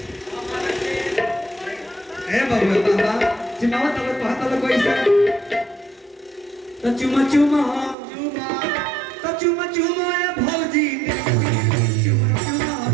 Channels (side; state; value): left; drops out; at 8.0 s